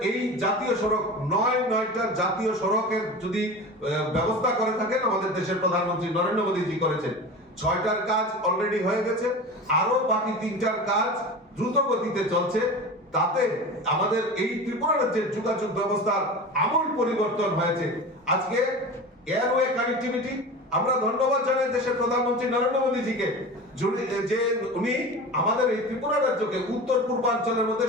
এই জাতীয় সড়ক 9টা জাতীয় সড়কের যদি ব্যবস্থা করে থাকেন আমাদের দেশের প্রধানমন্ত্রী নরেন্দ্র মোদীজি করেছেন। 6টার কাজ অলরেডি হয়ে গেছে, আরো বাকি 3টার কাজ দ্রুত গতিতে চলছে। তাতে আমাদের এই ত্রিপুরা রাজ্যের যোগাযোগ ব্যবস্থার আমূল পরিবর্তন হয়েছে। আজকে এয়ারওয়ে কানেক্টিভিটি আমরা ধন্যবাদ জানাই দেশের প্রধানমন্ত্রী নরেন্দ্র মোদীজিকে যে উনি আমাদের এই ত্রিপুরা রাজ্যকে উত্তর পূর্বাঞ্চলের মধ্যে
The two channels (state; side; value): normal; both; correlation 0.31